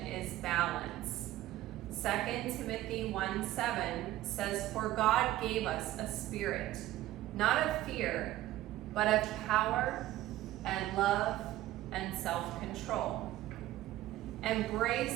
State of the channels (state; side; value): quieter; left; 15.2 dB